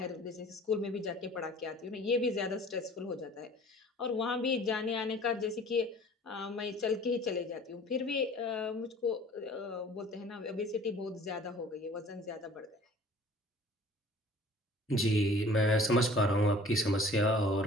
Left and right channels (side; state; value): both; normal; correlation 0.48